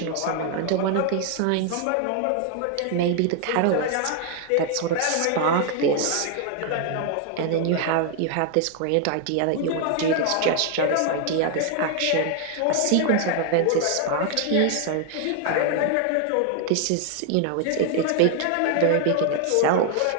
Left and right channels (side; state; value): both; different; correlation 0.00